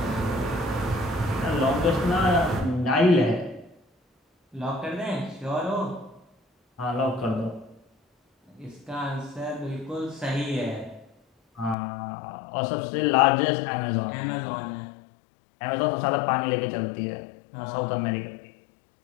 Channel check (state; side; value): drops out; right; at 11.8 s